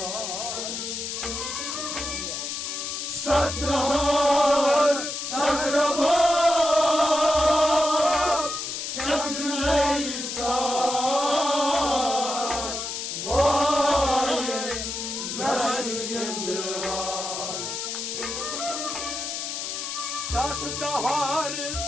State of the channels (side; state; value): left; noise; hiss, 4 dB below the sound